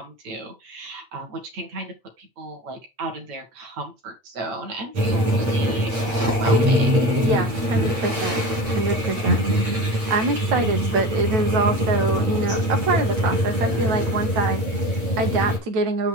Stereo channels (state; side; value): late; left; 8.6 ms